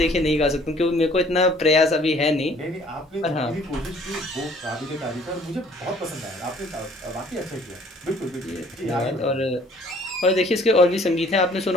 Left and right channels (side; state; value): both; normal; correlation 0.57